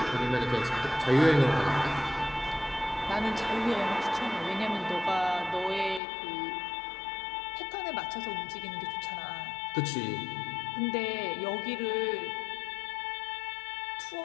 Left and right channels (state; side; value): drops out; right; at 6.0 s